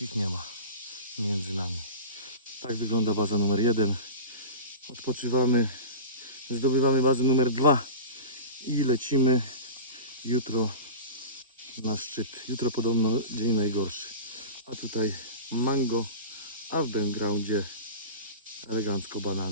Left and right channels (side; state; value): both; inverted; correlation -0.31